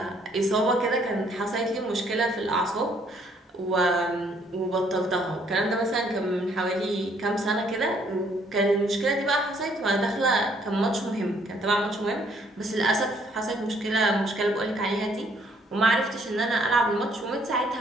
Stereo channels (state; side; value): normal; both; correlation 0.65